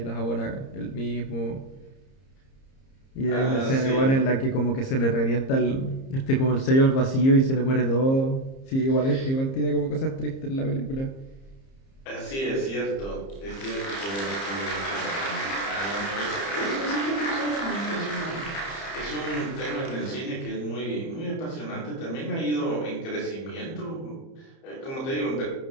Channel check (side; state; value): right; late; 30 ms